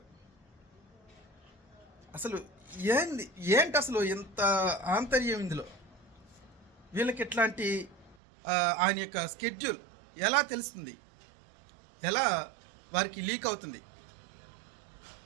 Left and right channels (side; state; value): left; drops out; at 8.2 s